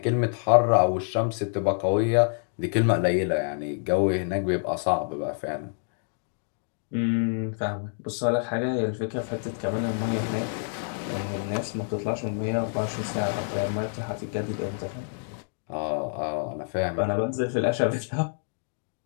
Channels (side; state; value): right; silent; 60 dB below the other